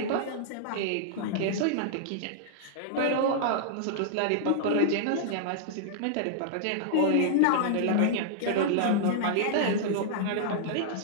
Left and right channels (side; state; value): both; different; correlation -0.01